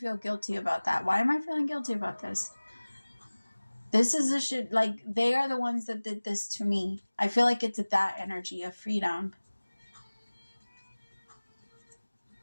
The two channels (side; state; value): both; inverted; correlation -1.00